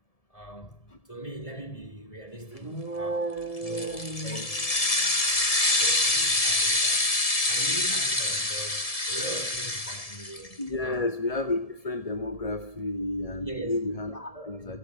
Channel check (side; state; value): right; late; 1.7 ms